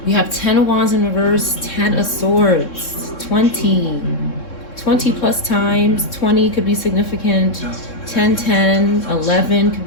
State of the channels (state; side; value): late; right; 3.6 ms